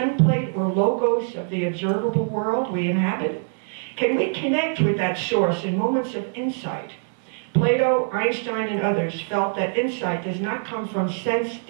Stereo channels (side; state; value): left; silent; digital silence